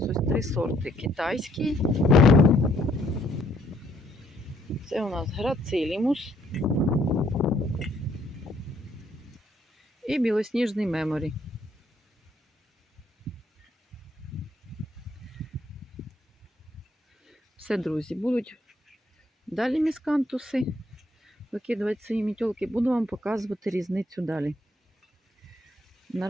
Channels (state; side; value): normal; both; correlation 0.68